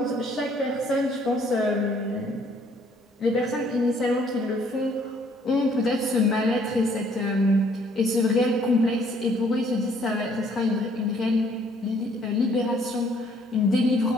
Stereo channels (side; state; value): both; normal; correlation 0.62